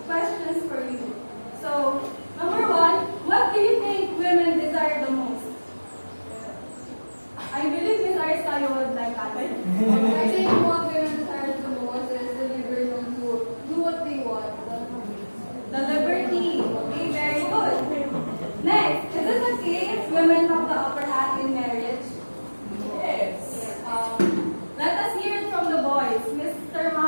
questions for you. So, number one, what do you think women desire the most? I believe Miss Aristeo would like that. I think what women desire the most is the liberty to do what they want. The liberty. Okay, very good. Next, is it okay if women have the upper hand in marriage? Yes. Let us hear it from the boys. Mr.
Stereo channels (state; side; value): inverted; both; correlation -1.00